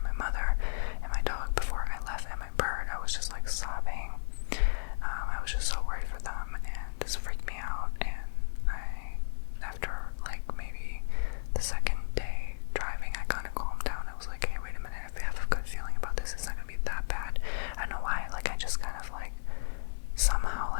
my mother and my dog before I left, and my bird. I was just like sobbing. I was just so worried for them, and this freaked me out. And after like maybe the second day driving, I kind of calmed down. I was like, hey, wait a minute, I have a good feeling about this. It's not gonna be that bad. I don't know why. Like I just kind of like somehow,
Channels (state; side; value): silent; right; digital silence